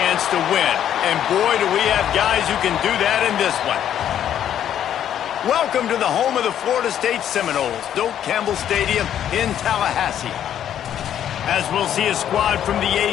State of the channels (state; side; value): quieter; right; 10.2 dB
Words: to win. And boy, do we have guys who can do that in this one. Welcome to the home of the Florida State Seminoles, Doak Campbell Stadium in Tallahassee. As we'll see a squad from the